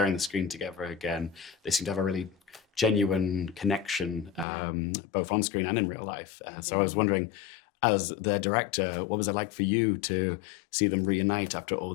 the screen together again. They seem to have a really genuine connection, both on screen and in real life. So I was wondering, as their director, what was it like for you to see them reunite after all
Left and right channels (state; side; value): drops out; right; at 4.5 s